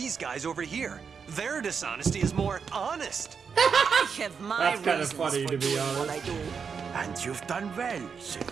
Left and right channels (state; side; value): quieter; left; 6.1 dB